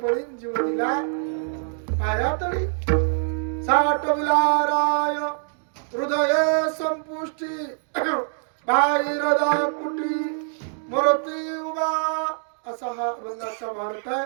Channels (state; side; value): silent; left; digital silence